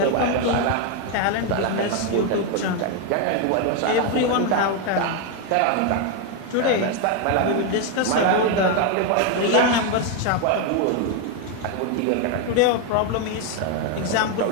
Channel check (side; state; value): both; different; correlation 0.01